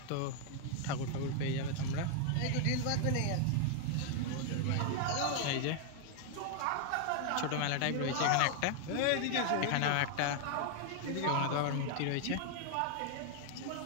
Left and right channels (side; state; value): both; different; correlation 0.00